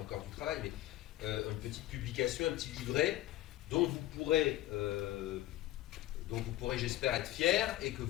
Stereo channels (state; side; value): quieter; right; 14.9 dB